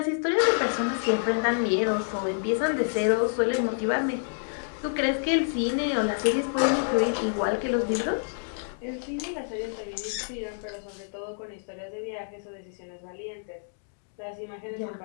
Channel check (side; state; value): right; silent; digital silence